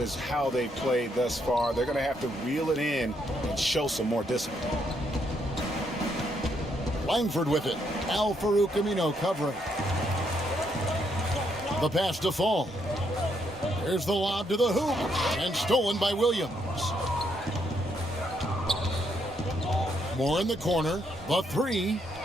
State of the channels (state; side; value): normal; both; correlation 0.75